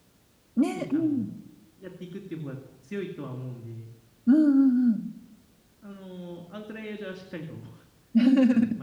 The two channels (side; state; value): both; identical; correlation 1.00